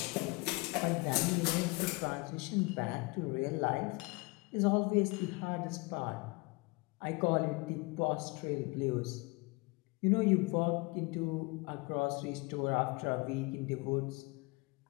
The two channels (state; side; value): quieter; right; 26.0 dB